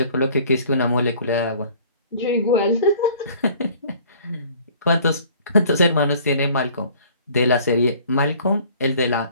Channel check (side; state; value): both; inverted; correlation -0.52